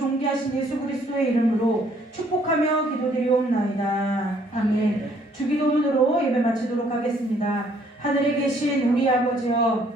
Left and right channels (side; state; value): both; normal; correlation 0.64